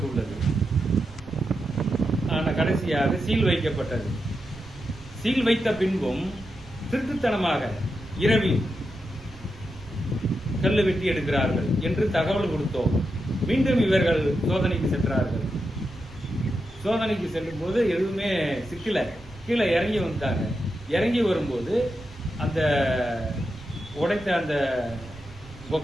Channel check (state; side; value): noise; right; rumble, 19 dB below the sound